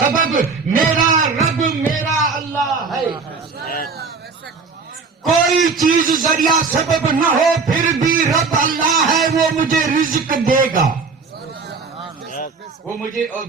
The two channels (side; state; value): left; quieter; 4.7 dB